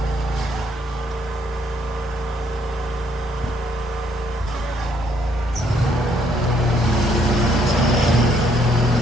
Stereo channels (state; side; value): normal; both; correlation 0.69